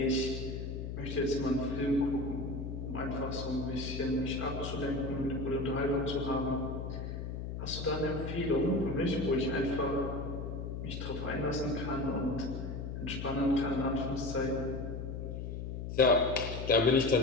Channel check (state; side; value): noise; left; hum, 5 dB below the sound